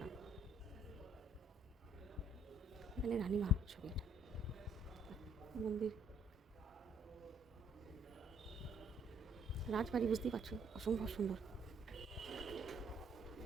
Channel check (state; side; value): normal; both; correlation 0.64